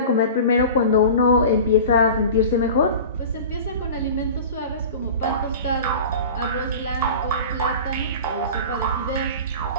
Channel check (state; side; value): inverted; both; correlation -0.36